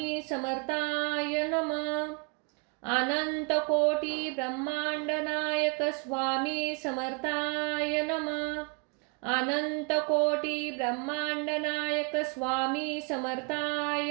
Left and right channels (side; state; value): left; quieter; 34.6 dB